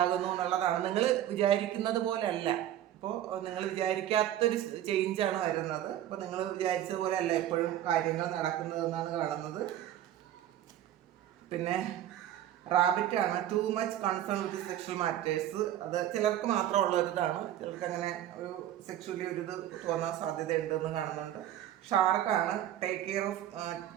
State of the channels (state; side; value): quieter; left; 12.0 dB